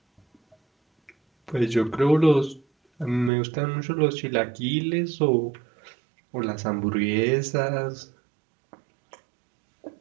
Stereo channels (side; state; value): left; drops out; at 3.3 s